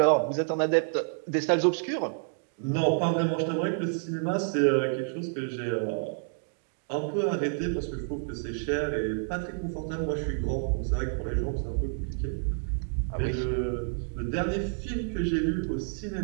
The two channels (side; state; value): left; silent; digital silence